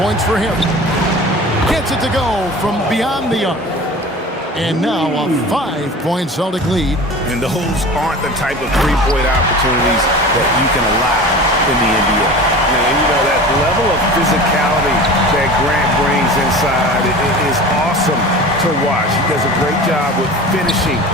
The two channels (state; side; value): normal; both; correlation 0.37